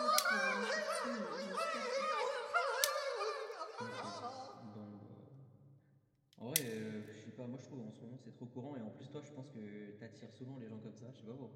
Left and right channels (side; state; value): both; identical; correlation 1.00